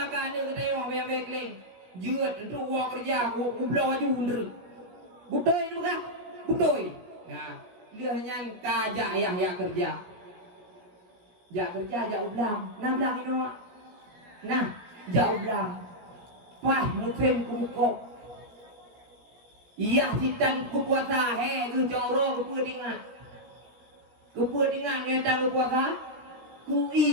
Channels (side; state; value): left; late; 17 ms